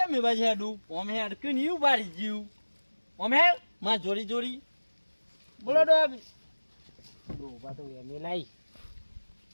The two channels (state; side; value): inverted; both; correlation -1.00